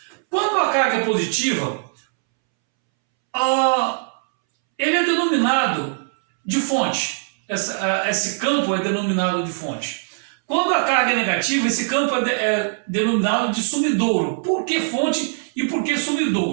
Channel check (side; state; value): left; silent; 65 dB below the other